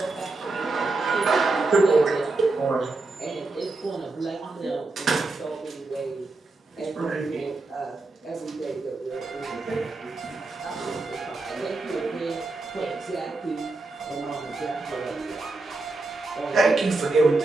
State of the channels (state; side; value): quieter; left; 3.3 dB